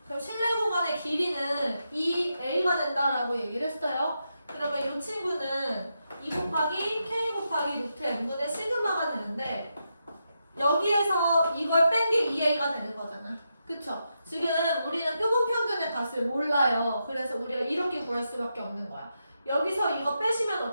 그럼 실내 구간의 길이는 2a가 된다라고 얘기를 했어요. 그러면 이 친구는 2 곱하기 k 곱하기 루트 n분의 시그마가 되는데 여기에서 이걸 뺀 게 2a가 되는 거잖아. 그쵸? 지금 우리는 표본 평균의 값을 몰라요. 그래서 우리가 이렇게 구할 수밖에 없는 거야. 여기서 이거 빼시면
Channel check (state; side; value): inverted; both; correlation -0.85